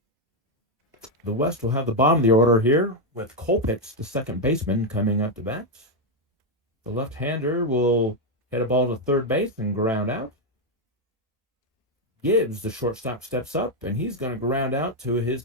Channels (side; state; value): both; normal; correlation 0.03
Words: The West will have the bottom of the order here with Colpitts, the second baseman, coming up to bat. The left-hander will hit a ball to third base and ground out. Gibbs, the shortstop, steps up, and he's going to ground out to his